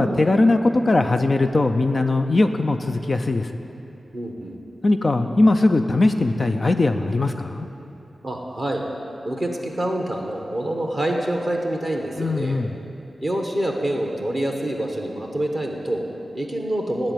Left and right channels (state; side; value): normal; both; correlation 0.95